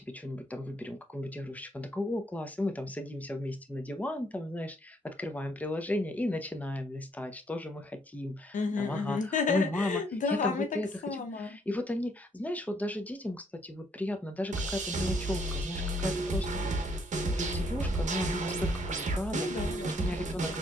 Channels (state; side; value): normal; both; correlation 0.69